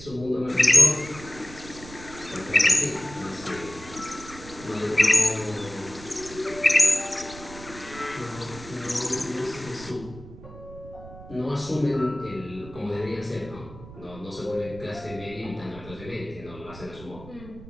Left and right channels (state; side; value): noise; right; rumble, 16 dB below the sound